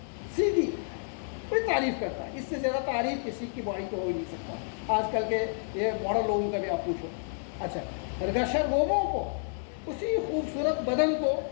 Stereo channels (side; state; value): right; silent; digital silence